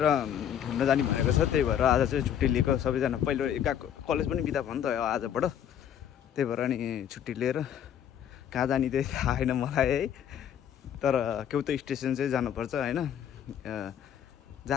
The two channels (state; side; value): quieter; right; 9.5 dB